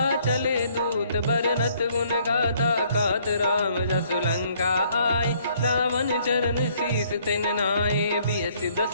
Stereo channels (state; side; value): inverted; both; correlation -0.64